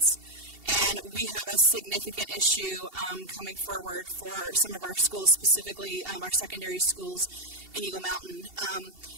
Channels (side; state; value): left; late; 2.7 ms